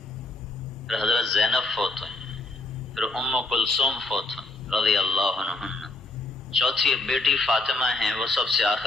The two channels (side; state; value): right; quieter; 3.0 dB